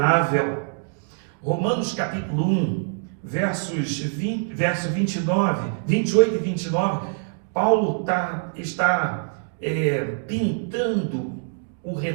Romanos capítulo 1, verso 29, 28 e 29, Paulo está pintando o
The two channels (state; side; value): silent; left; digital silence